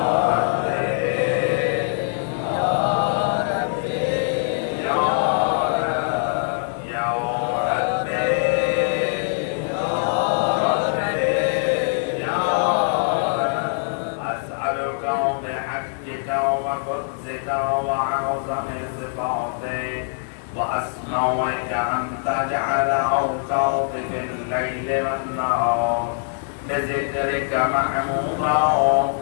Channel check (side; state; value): right; silent; digital silence